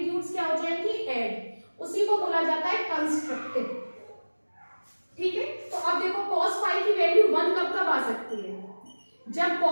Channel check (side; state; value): both; inverted; correlation -1.00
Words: क्या हो जाएंगी, ऐड। उसी को बोला जाता है कंस्ट्रक्टिव। ठीक है, तो अब देखो cos फाई की वैल्यू 1 कब कब आ सकती है, जब